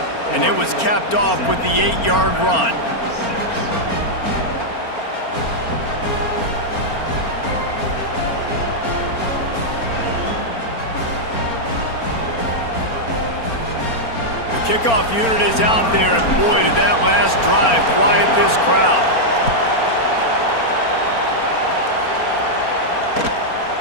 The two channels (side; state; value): right; late; 4.4 ms